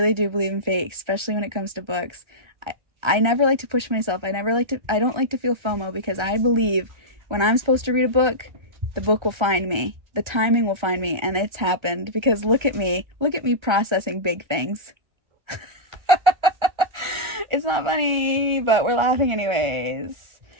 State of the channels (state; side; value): late; left; 1.3 ms